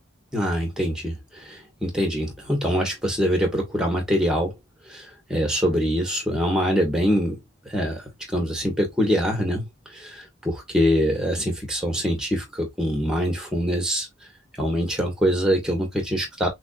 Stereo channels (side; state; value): both; normal; correlation 0.73